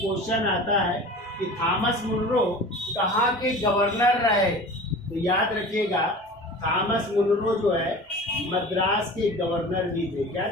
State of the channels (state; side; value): normal; both; correlation 0.38